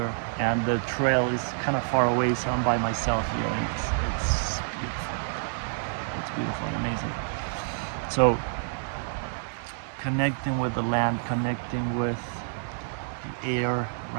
and the trail is kind of far away, so I'm by myself here, and it's beautiful. It's beautiful and amazing. So connecting with the land, connecting with the air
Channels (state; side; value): silent; left; 59 dB below the other